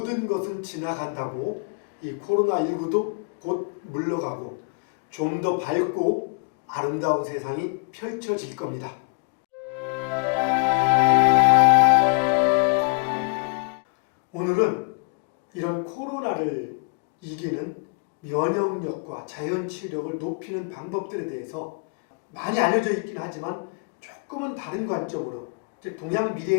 것은 지나간다고 이 코로나19도 곧 물러가고 좀 더 밝고 아름다운 세상이 펼쳐질 겁니다. 오늘은 이런 코로나를 이기는 면역력과 자연치유력을 높이는 방법들에 대해서 많이 알려져 있긴 하지만 조금은 다른 관점으로, 즉 동양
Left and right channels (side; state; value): right; quieter; 38.5 dB